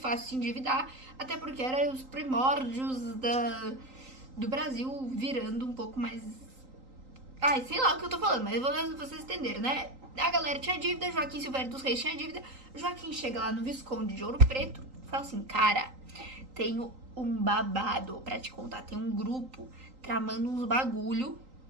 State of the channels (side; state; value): left; late; 3.8 ms